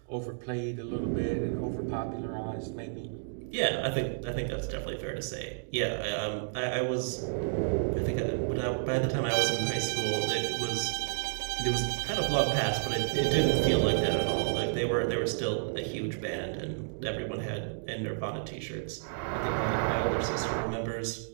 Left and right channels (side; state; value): left; silent; digital silence